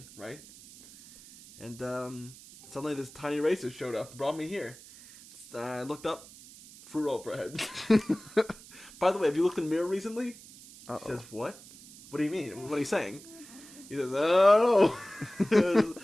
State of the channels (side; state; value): right; noise; hiss, 19 dB below the sound